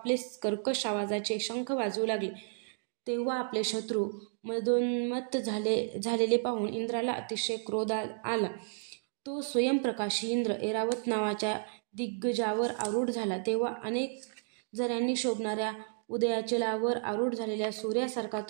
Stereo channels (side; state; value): left; silent; digital silence